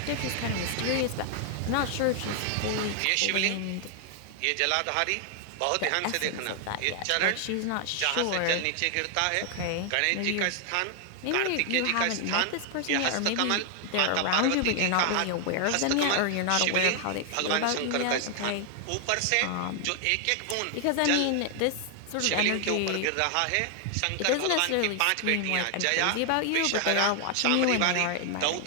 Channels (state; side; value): different; both; correlation 0.00